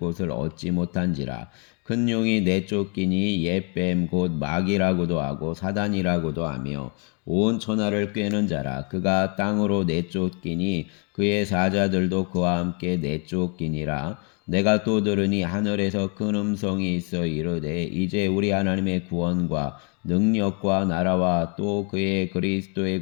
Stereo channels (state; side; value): quieter; right; 35.2 dB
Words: 얻지 못한지라. 큰 용이 내쫓기니 옛뱀 곧 마귀라고도 하고 사단이라고도 하며 온 천하를 꿰는 자라. 그가 땅으로 내쫓기니 그의 사자들도 그와 함께 내쫓기니라. 내가 또 들으니 하늘에서 큰 음성이 있어 이르되 이제 우리 하나님의 구원과 능력과 나라와 또 그의 그리스도의